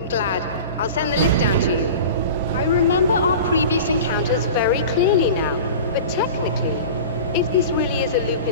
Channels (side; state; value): both; inverted; correlation -0.35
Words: glad. I'll send the lift down to you. I remember our previous encounters very clearly now, but technically, if this really is a loop